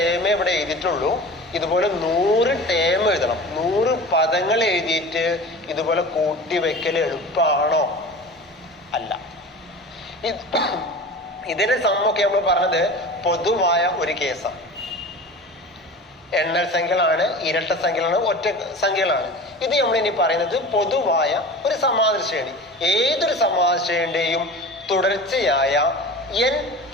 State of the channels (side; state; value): both; normal; correlation 0.36